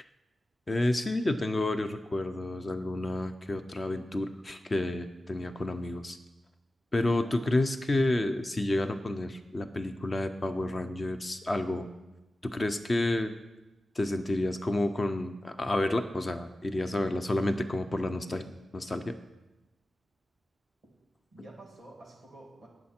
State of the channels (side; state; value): both; normal; correlation 0.95